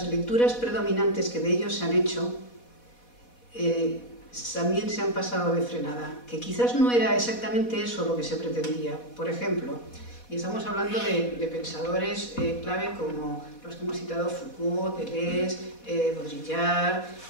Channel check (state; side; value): late; right; 4.1 ms